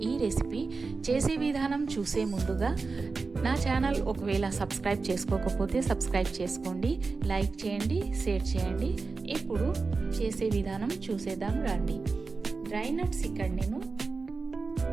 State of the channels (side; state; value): left; quieter; 4.2 dB